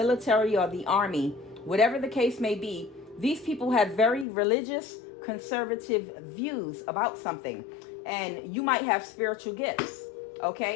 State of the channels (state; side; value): drops out; right; at 4.2 s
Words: or the army. Whatever the case may be, these people have very religious conservative views about something, and you might have spiritual gifts.